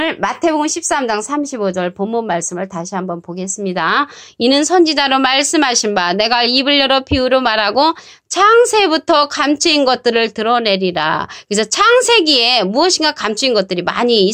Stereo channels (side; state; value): both; identical; correlation 1.00